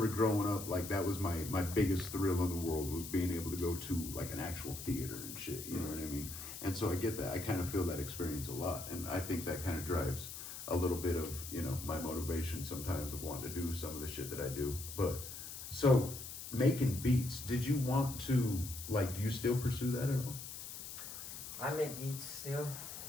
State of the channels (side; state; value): left; noise; hiss, 9 dB below the sound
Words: growing up, like, that was my biggest thrill in the world, was being able to go to like an actual theater and shit. You know what I mean? And so I get that. I kind of feel that experience a lot, and I think that kind of drives a little bit of, you know, my motivation sometimes of wanting to do some of the shit that I do. But so making beats, did you want to, like, do you still pursue that at all? I make beats still.